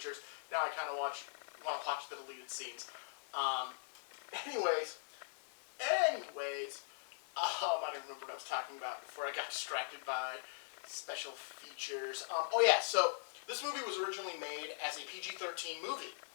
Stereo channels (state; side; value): silent; right; 50 dB below the other